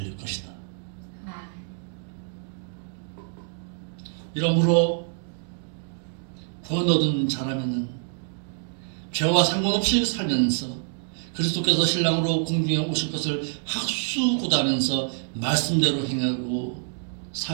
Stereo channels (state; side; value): silent; left; 61 dB below the other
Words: 것이다. 이러므로 구원 얻은 자라면은 죄와 상관없이 살면서 그리스도께서 신랑으로 공중에 오실 것을 학수고대하면서 말씀대로 행하고